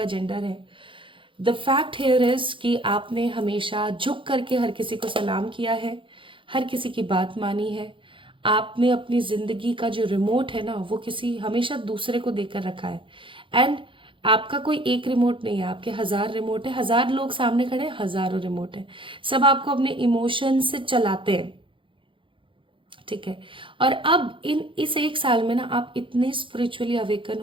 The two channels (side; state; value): left; late; 0.25 ms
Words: जेंडर है, द फैक्ट हेयर इज कि आपने हमेशा झुक करके हर किसी को सलाम किया है, हर किसी की बात मानी है। आपने अपनी जिंदगी का जो रिमोट है ना, वो किसी हमेशा दूसरे को देकर रखा है। एंड आपका कोई एक रिमोट नहीं है, आपके 1000 रिमोट है, 1000 लोग सामने खड़े हैं, हजारों रिमोट है। सब आपको अपने इमोशन से चलाते हैं, ठीक है। और अब इस एक साल में ना आप इतने स्पिरिचुअली अवेकन